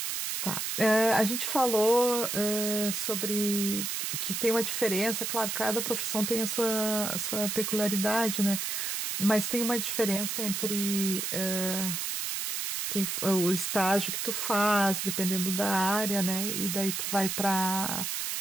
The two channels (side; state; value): right; noise; hiss, 2 dB below the sound